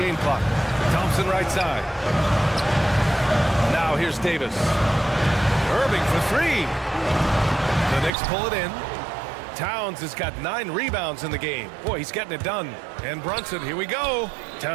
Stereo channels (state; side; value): drops out; left; at 8.1 s